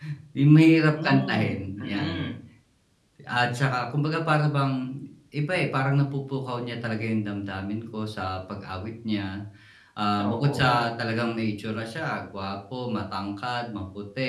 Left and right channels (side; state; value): both; identical; correlation 1.00